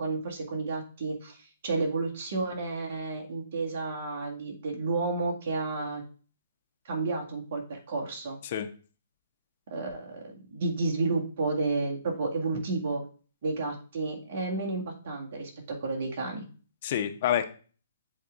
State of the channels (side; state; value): both; inverted; correlation -0.63